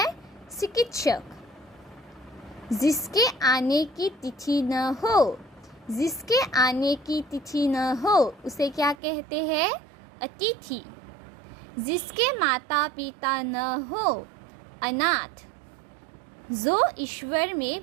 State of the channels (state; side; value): drops out; left; at 9.0 s